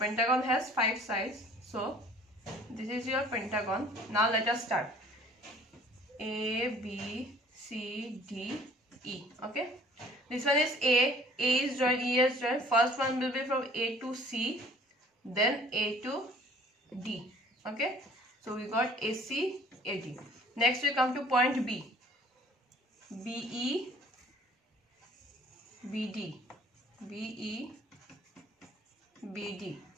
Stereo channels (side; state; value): both; normal; correlation 0.53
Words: has 5 sides. So, this is your pentagon. Now, let us start. A, B, C, D, E. Okay. This one is A. A is joined, E is joined. First one will be from A to C. Then A to D. Okay. So, we got AC, AD. Next, we come to point B. BE, BD, BE, BD.